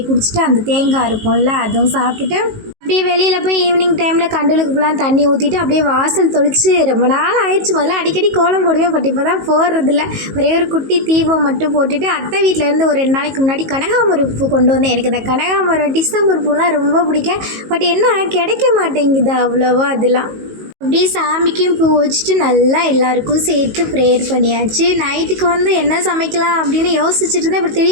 குடிச்சிட்டு அந்த தேங்காய் இருக்கும்ல அதுவும் சாப்பிட்டுட்டு அப்படியே வெளியில் போய் ஈவினிங் டைமில் கண்டலுக்கு ஃபுல்லாக தண்ணி ஊற்றிட்டு அப்படியே வாசல் தொளிச்சு ரொம்ப நாள் ஆயிடுச்சு. முதல்ல அடிக்கடி கோலம் போடுவேன். பட் இப்போ தான் போடுறதில்ல. ஒரே ஒரு குட்டி தீபம் மட்டும் போட்டுட்டு அத்தை வீட்டிலேருந்து ஒரு 2 நாளைக்கு முன்னாடி கனகாமரம் பூ கொண்டு வந்தேன். எனக்கு இந்த கனகாமரம் டிசம்பர் பூலாம் ரொம்ப பிடிக்கும். பட் என்ன கிடைக்க மாட்டேங்குது அவ்வளோவா. அதெல்லாம் அப்படியே சாமிக்கும் பூ வச்சுட்டு நல்லா எல்லாருக்கும் சேர்த்து ப்ரேயர் பண்ணியாச்சு. நைட்டுக்கு என்ன சமைக்கலாம் அப்படின்னு யோசிச்சுட்டு இருந்தேன். இப்படி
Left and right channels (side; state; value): left; late; 19 ms